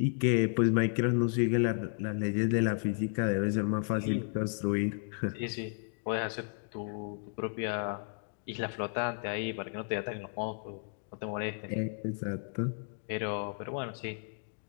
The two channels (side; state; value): right; silent; digital silence